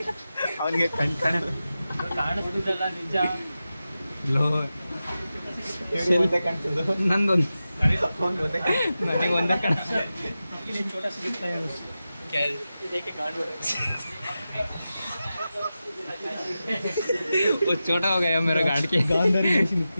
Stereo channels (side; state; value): both; inverted; correlation -0.93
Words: ಅವನಿಗೆ ಕಾಣಿಸ್ತಿದ್ದಲ್ಲ ನಿಜ. ಲೋ ನಂದೊಂದು ನನಗೆ ಒಂದೇ ಕಾಣ. छोटा सा दिखता है वो छोटा हो गया मेरा गाड़ के.